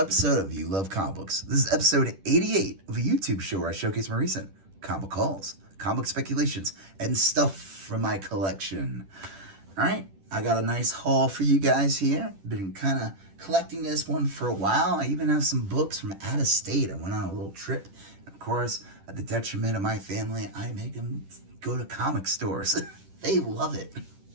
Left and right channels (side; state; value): left; late; 10 ms